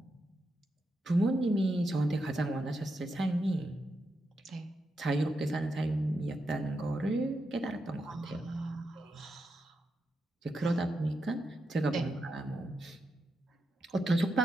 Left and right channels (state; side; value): normal; both; correlation 0.85